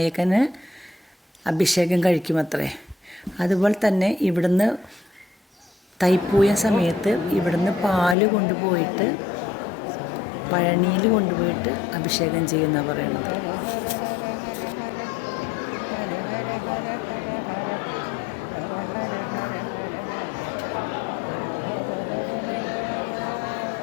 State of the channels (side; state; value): right; drops out; at 8.2 s